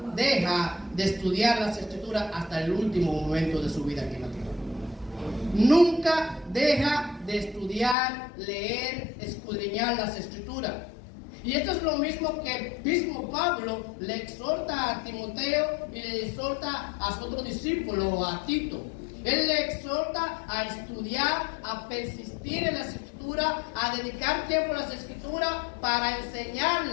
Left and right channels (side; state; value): right; drops out; at 8.0 s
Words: deja de estudiar las Escrituras hasta el último momento de su vida aquí en la tierra. Nunca deja de estudiar, leer, escudriñar las Escrituras. Y esto es lo mismo que el mismo Pablo le exhorta a Timoteo y le exhorta a su otro discípulo, a Tito. Él le exhorta a estudiar, a persistir en las Escrituras, a dedicar tiempo a las Escrituras para enseñar